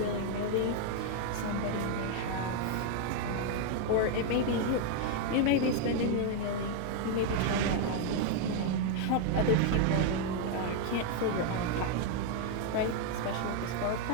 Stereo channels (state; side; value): different; both; correlation 0.01